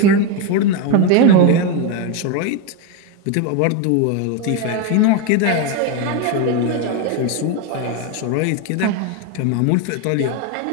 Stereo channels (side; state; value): both; different; correlation 0.03